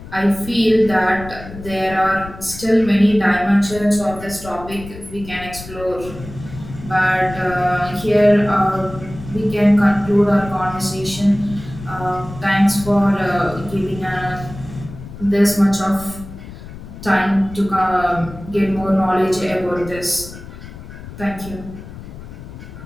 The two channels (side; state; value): left; noise; rumble, 14 dB below the sound